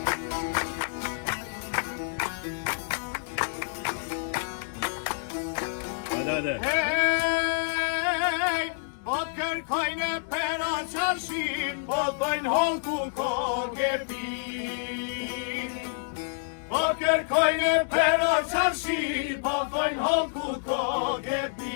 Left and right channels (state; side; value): silent; right; digital silence